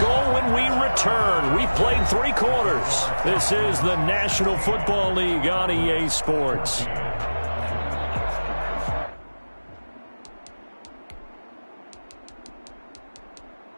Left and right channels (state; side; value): inverted; both; correlation -1.00